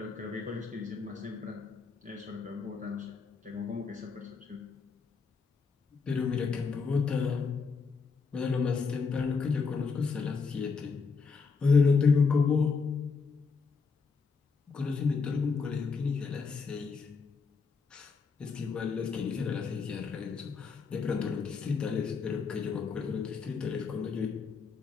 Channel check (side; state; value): right; quieter; 5.0 dB